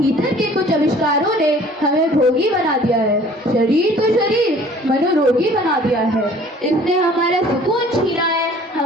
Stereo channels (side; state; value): both; normal; correlation 0.51